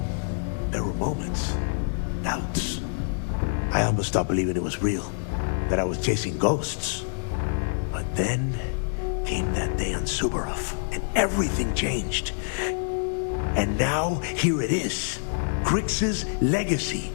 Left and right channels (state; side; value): silent; right; digital silence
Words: there were moments, doubts. I almost stopped believing it was real, that I was chasing ghosts. But then came that day on Subarov, and everything changed. And now, here it is. Grix's legacy,